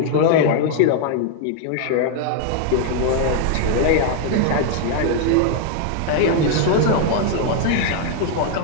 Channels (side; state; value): both; different; correlation 0.00